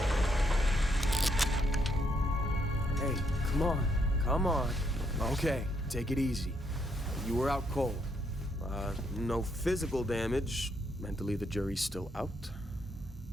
Hey, come on. Come on. Okay, take it easy. You were out cold. No physical damage. Mentally, the jury's still out.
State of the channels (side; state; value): both; normal; correlation 0.74